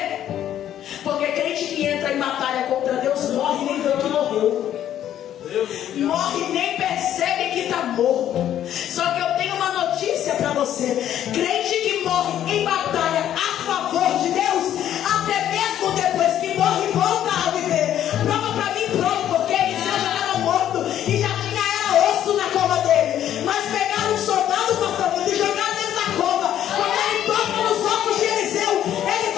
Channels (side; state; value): right; quieter; 11.0 dB